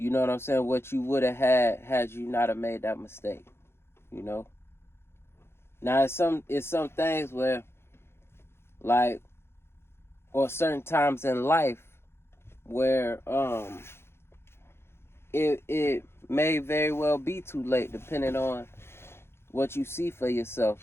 know what I'm saying, what you would have had you not have made that mistake, Now, it's some things where, like, or certain times in life where it may very well be too late, depending on what you see for yourself.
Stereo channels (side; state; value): right; late; 0.12 ms